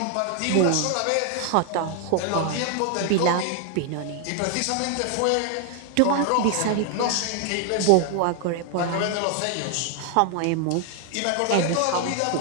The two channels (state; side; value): different; both; correlation 0.00